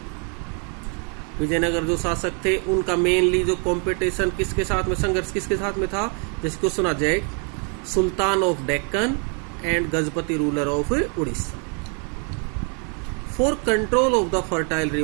Vijayanagar जो शासक थे उनका mainly जो competition किसके साथ में, संघर्ष किसके साथ में था? जिसको सुना जाए, sultan of Deccan and Gajapati ruler of Orissa, for control of the fertile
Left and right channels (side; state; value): left; quieter; 38.8 dB